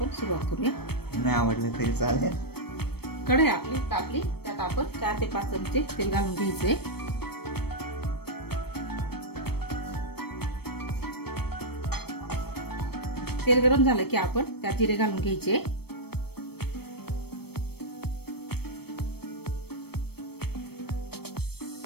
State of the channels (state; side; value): late; right; 0.96 ms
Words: सुरुवात करूया। नाही आवडलं तरी चालेल। कढई आपली तापली, त्यात आपण 4 ते 5 चमचे तेल घालून घ्यायचे। तेल गरम झालं की आपण त्यात जिरे घालून घ्यायचे।